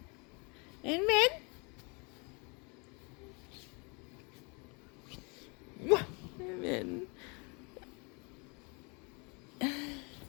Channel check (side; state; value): right; quieter; 31.5 dB